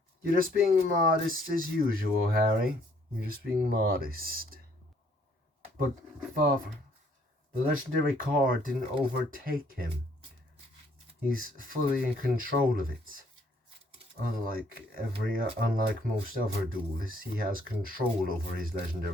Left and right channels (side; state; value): both; normal; correlation 0.64